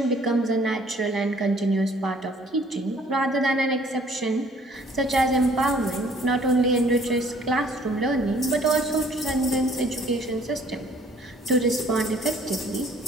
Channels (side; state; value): both; normal; correlation 0.57